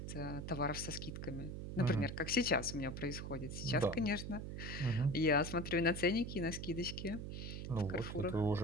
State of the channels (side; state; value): right; noise; hum, 6 dB below the sound